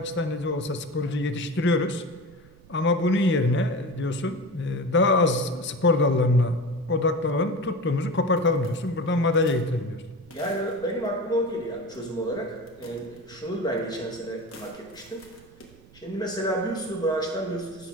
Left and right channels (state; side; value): noise; right; rumble, 25 dB below the sound